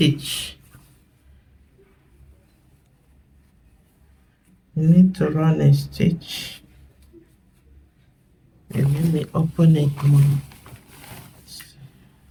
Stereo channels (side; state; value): both; identical; correlation 1.00